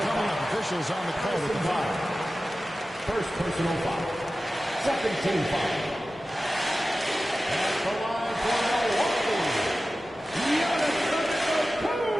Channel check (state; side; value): normal; both; correlation 0.95